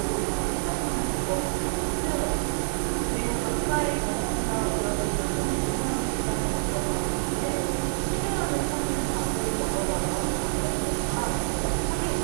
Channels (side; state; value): left; silent; 58 dB below the other